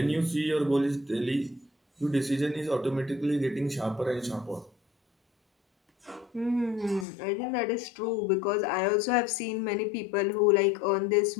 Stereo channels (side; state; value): right; drops out; at 7.1 s